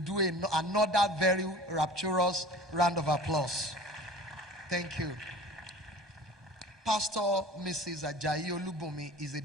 do another very rapturous round of applause. Thank you. Pastor Mrs. Ajayi Olubumi is a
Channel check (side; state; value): both; normal; correlation 0.41